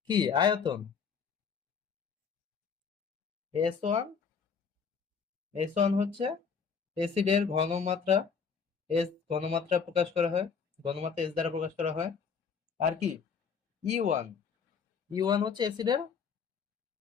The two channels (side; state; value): right; quieter; 6.1 dB